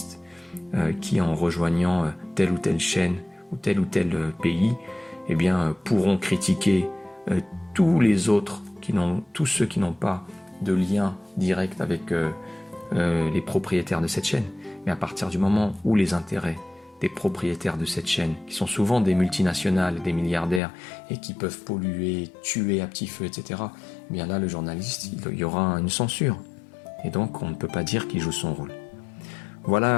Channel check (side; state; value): right; drops out; at 20.6 s